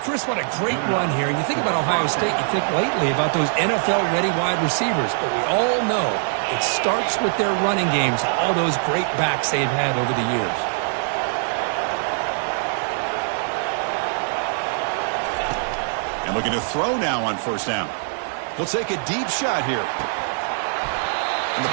what a great run here. And you think about Ohio State, you think lately about those NFL-ready wide receivers. But we all know it starts with their running games, all those great backs they've had over the years. And looking to throw now on 1st down. He'll take a deep shot here. And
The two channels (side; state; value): left; silent; 64 dB below the other